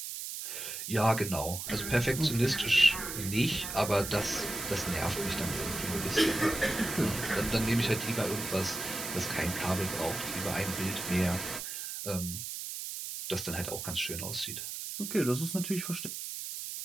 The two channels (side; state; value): right; noise; hiss, 6 dB below the sound